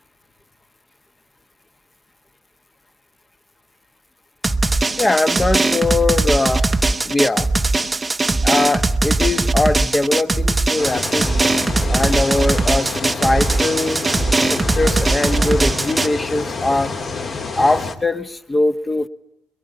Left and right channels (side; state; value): both; normal; correlation 0.93